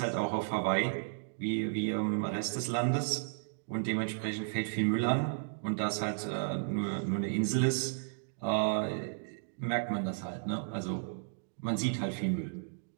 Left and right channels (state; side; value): silent; left; digital silence